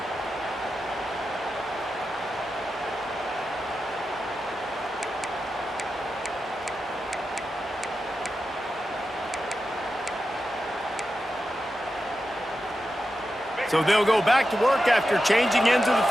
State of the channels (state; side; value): normal; both; correlation 0.90